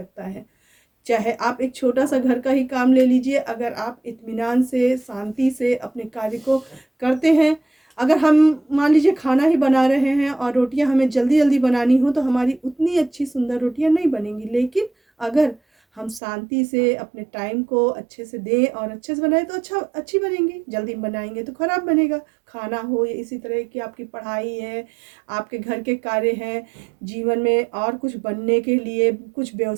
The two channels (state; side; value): drops out; left; at 16.2 s